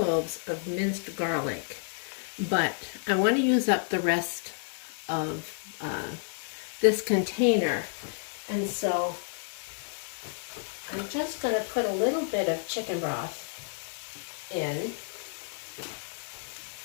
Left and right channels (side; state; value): right; silent; digital silence